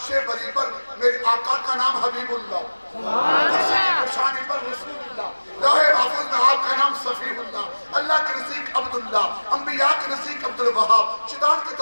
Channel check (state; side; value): inverted; both; correlation -1.00